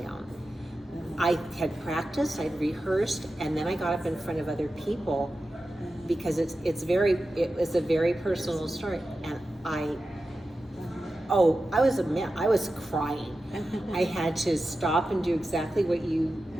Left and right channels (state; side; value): normal; both; correlation 0.92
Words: I had practiced, I'd rehearsed, and then I got up in front of other people because it was a very personal story. And I was a mess. I was crying. I had to stop and do exactly what you